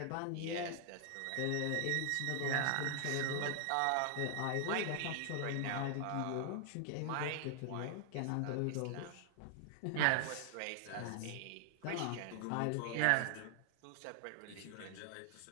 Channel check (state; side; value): different; both; correlation 0.00